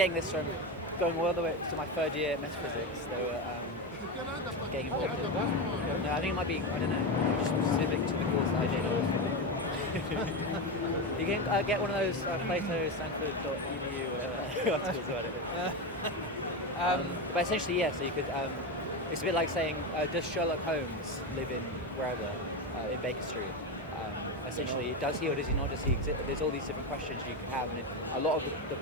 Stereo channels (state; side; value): normal; both; correlation 0.15